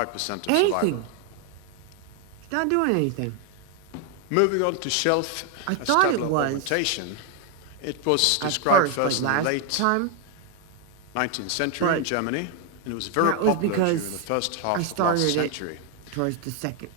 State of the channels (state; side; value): different; both; correlation 0.01